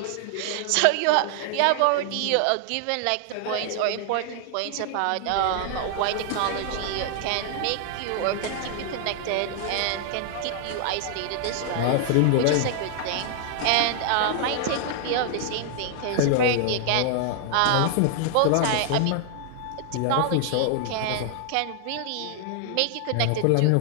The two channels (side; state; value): both; different; correlation 0.00